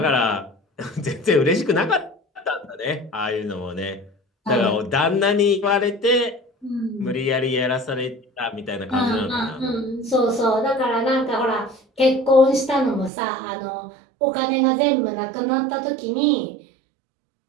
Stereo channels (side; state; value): left; drops out; at 13.1 s